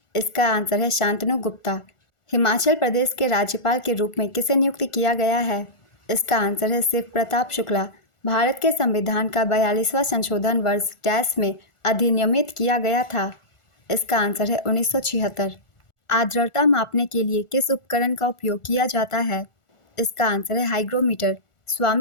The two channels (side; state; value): right; late; 1.4 ms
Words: इसका आंसर है शांतनु गुप्ता। हिमाचल प्रदेश के राज्यपाल के रूप में किसे नियुक्त किया गया है? इसका आंसर है शिव प्रताप शुक्ला। भारत के संविधान का 42वां संशोधन वर्ष डैश में अधिनियमित किया गया था। इसका आंसर है 1976। आर्द्रता मापने के लिए किस उपकरण का उपयोग किया जाता है? इसका आंसर है हाइग्रोमीटर।